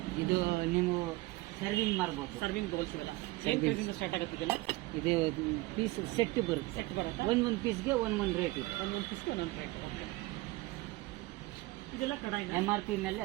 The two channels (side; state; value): left; quieter; 20.3 dB